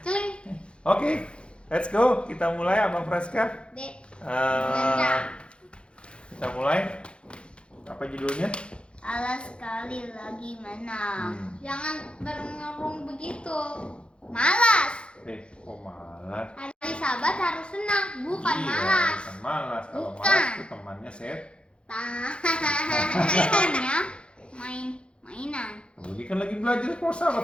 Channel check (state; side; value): late; right; 0.057 ms